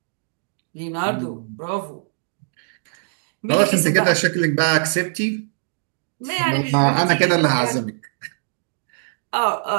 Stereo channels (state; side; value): silent; left; digital silence